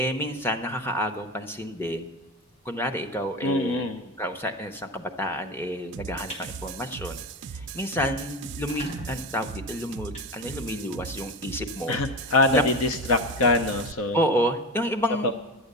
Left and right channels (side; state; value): both; normal; correlation 0.24